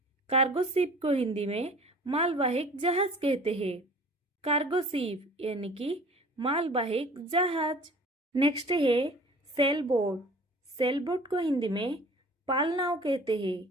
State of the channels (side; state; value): both; normal; correlation 0.47